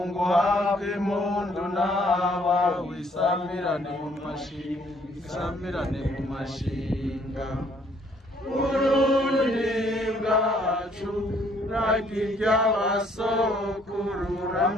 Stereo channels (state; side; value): normal; both; correlation 0.64